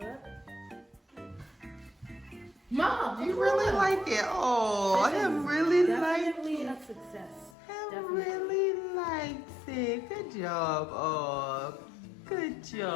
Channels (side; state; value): right; drops out; at 7.6 s